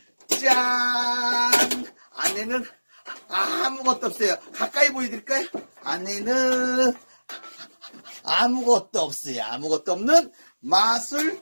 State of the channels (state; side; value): inverted; both; correlation -1.00